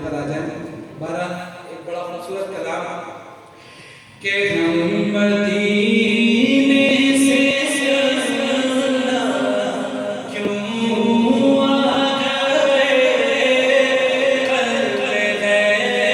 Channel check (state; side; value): identical; both; correlation 1.00